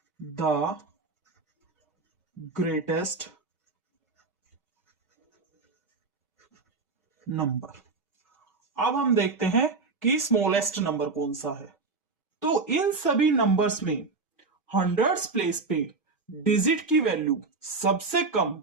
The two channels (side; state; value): left; quieter; 4.1 dB